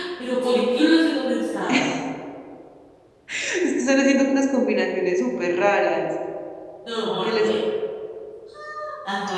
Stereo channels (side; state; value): both; identical; correlation 1.00